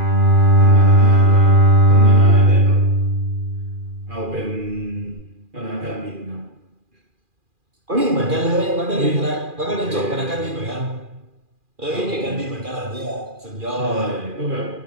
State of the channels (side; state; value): left; late; 2.4 ms